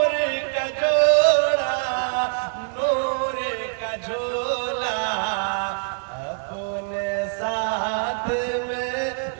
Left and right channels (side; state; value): left; silent; 63 dB below the other